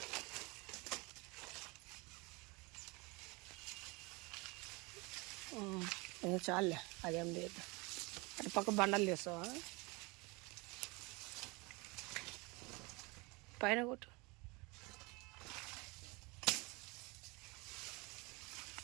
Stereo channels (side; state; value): left; quieter; 26.8 dB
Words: చాలే, అదేం లేదు. అటు పక్క బండలు తీస్తావా? పైన కొట్టు.